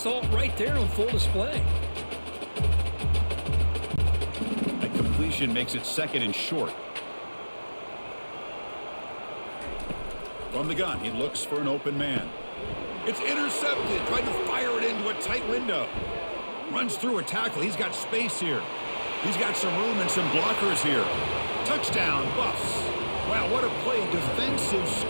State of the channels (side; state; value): both; inverted; correlation -1.00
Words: it right there on full display. Makes it 2nd and short. From the gun, he looks for an open man. It's intercepted. Tried to fire it into a tight window. Runs through a tackle. He's got space here. He's got some room and some blockers here. Touchdown, Buffs. Wow, what a play. Defensive